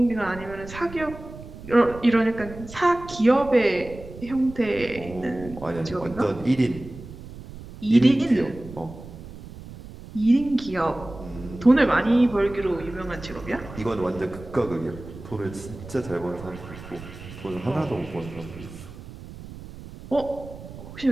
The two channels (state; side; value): noise; right; rumble, 15 dB below the sound